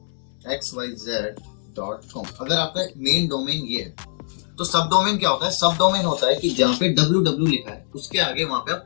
अगर आपका मेन डोमेन ये है, तो सब डोमेन क्या होता है, सब डोमेन होता है कि जहाँ पे www लिखा है उसके आगे वहां पे आप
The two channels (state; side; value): silent; right; digital silence